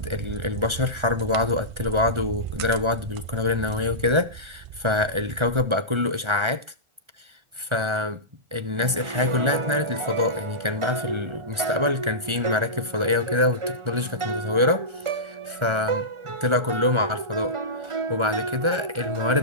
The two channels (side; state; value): left; late; 1.3 ms